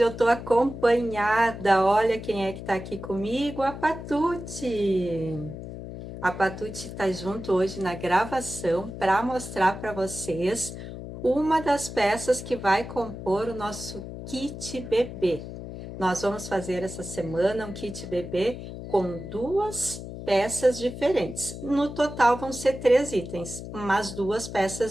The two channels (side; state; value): left; noise; hum, 10 dB below the sound